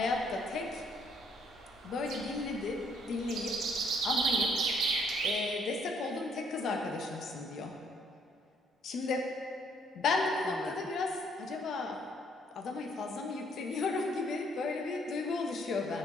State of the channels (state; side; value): normal; both; correlation 0.66